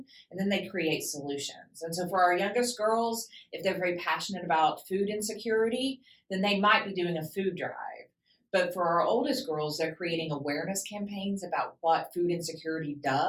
and then they create solutions. And so for our youngest girls, if they're very passionate about food insecurity, then they might be doing a food drive. But for our oldest girls, they're creating awareness campaigns about what food insecurity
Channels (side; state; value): both; identical; correlation 1.00